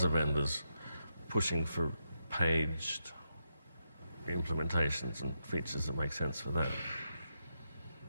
vendors pushing for paged implementations and features that make sense for that.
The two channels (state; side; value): inverted; both; correlation -0.83